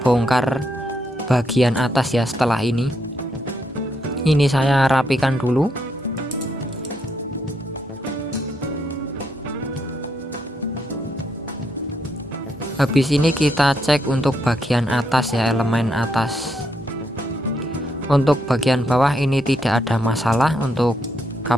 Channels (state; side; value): normal; both; correlation 0.77